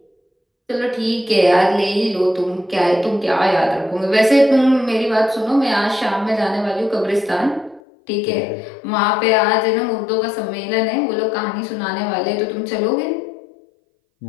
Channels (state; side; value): drops out; right; at 7.8 s